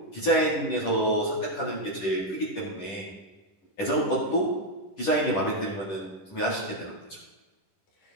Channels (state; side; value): late; right; 10 ms